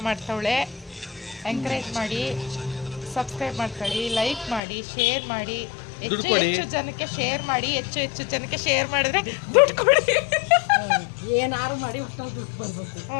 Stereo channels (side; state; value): right; drops out; at 4.6 s